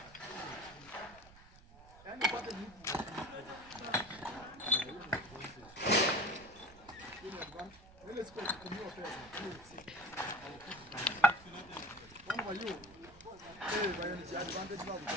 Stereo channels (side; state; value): right; noise; rumble, 22 dB below the sound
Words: Ile siku kutumiwa pesa. Mama yu. Baya ni advantage babu.